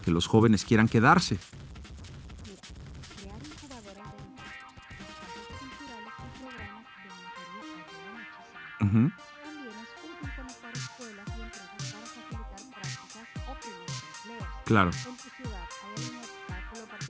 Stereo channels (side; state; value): both; identical; correlation 1.00